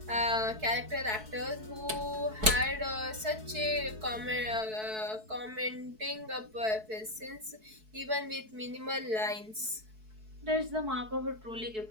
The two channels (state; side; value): late; left; 4.6 ms